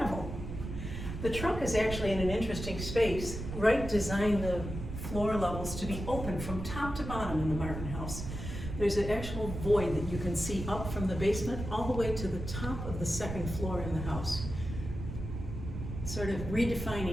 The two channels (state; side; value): noise; right; rumble, 7 dB below the sound